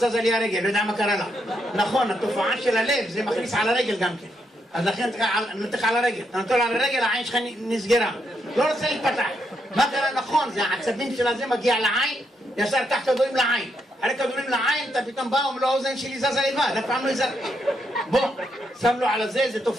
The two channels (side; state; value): both; normal; correlation 0.79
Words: לי הרגל, לא יודע מה קרה לה. נכון, התופעה של הלב, זה מכניס על הרגל גם כן. אז לכן נתך על הרגל, אתה נותן על הרגל, העין שלך נסגרה. לא רוצה להתפתח. מה קרה? נכון, זה העצבים של הזה מגיע לעין, ישר קח כדורים לעין. אחרי כדורים לעין, אתה פתאום בא, אומר לו, האוזן שלי זזה לבד, אף פעם לא יזר. בוא, שם לו על זה, זה